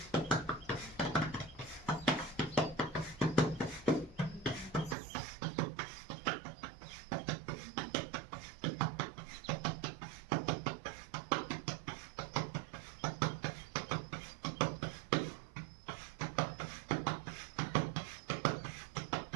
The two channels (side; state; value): left; drops out; at 5.0 s